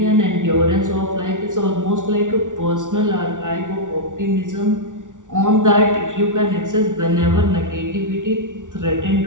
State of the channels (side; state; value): left; late; 0.87 ms